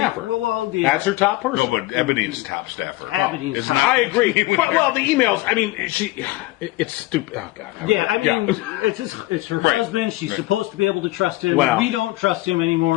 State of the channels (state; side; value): quieter; right; 19.0 dB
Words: That's her top person. No, but Ebony's top staffer. Ebony's It's top. not- I agree. Well, the emails. I mean, it's stupid. Oh God. Yeah, I mean, it's her Right. husband. She's supposed to be able to trust him. Well- We don't trust him